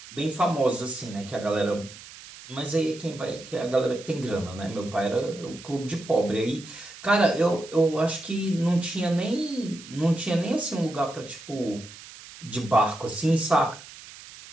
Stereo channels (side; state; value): right; noise; hiss, 17 dB below the sound